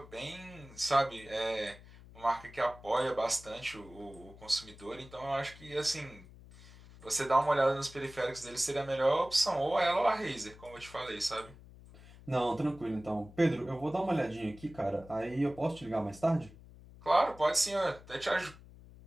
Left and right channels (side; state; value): left; noise; hum, 20 dB below the sound